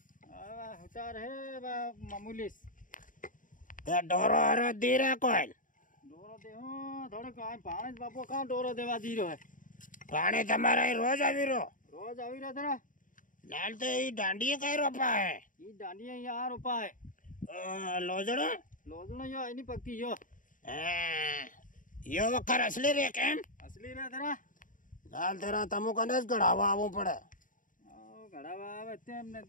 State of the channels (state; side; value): late; right; 0.38 ms